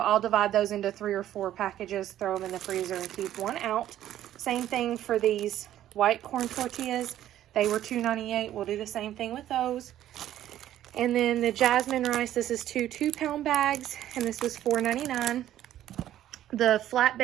divide those into 3 or 4 packages, throw them in the freezer, and keep one out. Same thing for these white corn tortillas. They were $2.98. We'll do the same thing with those. And then the jasmine rice, this is 2 2-pound bags, and this was $4.99. The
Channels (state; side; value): quieter; left; 12.3 dB